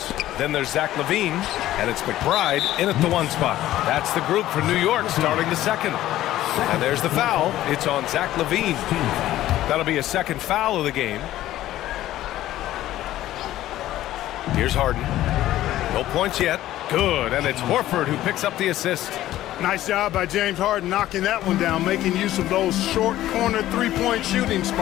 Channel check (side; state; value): right; quieter; 14.2 dB